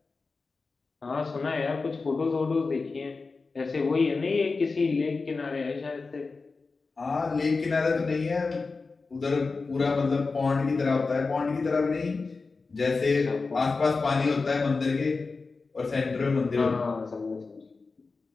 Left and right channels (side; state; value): right; quieter; 4.1 dB